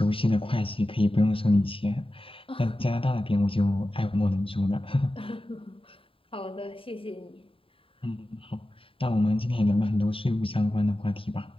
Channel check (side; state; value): right; late; 0.26 ms